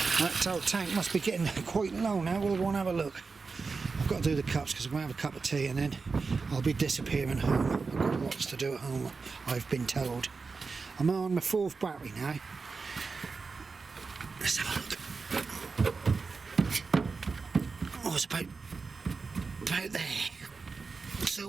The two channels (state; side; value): quieter; left; 4.5 dB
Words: That old tank must be getting quite low now. We'll go and have a look. I've got to do the cups because I'm going to have a cup of tea and then I'll be disappearing home. I've got lots to do at home, I've been told. I'm on my 4th battery now. Let's have a look. Oh, it's about there.